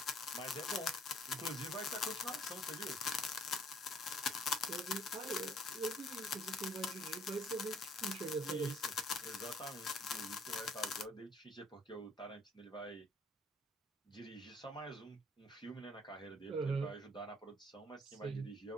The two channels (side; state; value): both; normal; correlation 0.60